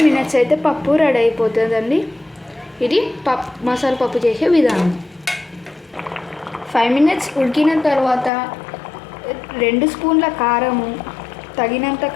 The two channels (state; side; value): drops out; right; at 8.3 s